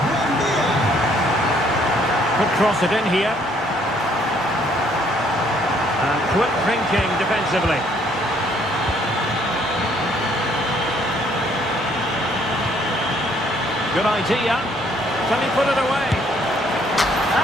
Could cross it in here. And quick thinking defensively. Good idea. Can he put it away?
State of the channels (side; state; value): both; normal; correlation 0.65